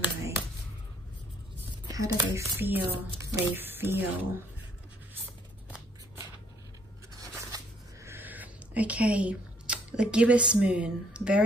How do they feel? They feel. Okay, the gibbous moon,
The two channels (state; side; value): normal; both; correlation 0.64